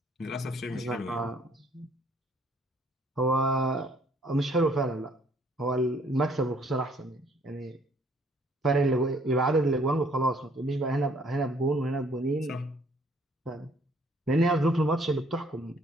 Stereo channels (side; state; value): both; normal; correlation 0.62